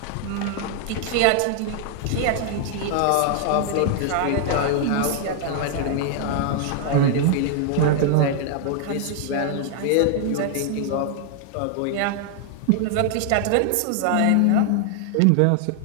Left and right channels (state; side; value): different; both; correlation 0.00